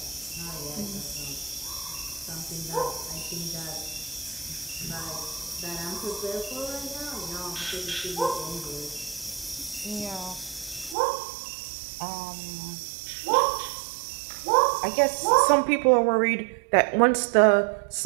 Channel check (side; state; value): left; drops out; at 11.0 s